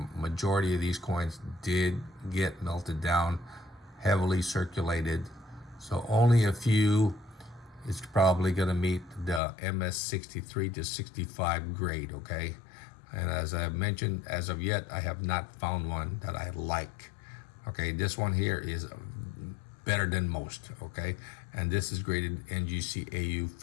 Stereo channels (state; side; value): drops out; right; at 9.4 s